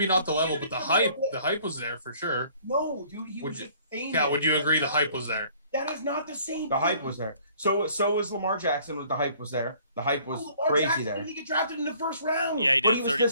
not the level, but the hype was there for sure. No, dude, he was just famous. Yeah, would you agree the hype was there? That is not the same. The hype was there. So was Lamar Jackson. The hype was there. The hype was crazy Jackson there. Didn't he get drafted in the first round? Yeah, he did.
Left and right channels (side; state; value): both; inverted; correlation -0.57